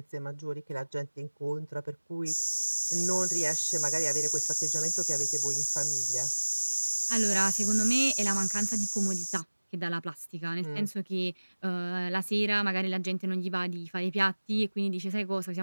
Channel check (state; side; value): inverted; both; correlation -1.00